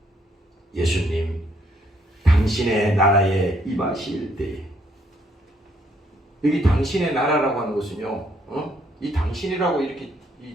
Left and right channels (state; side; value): normal; both; correlation 0.69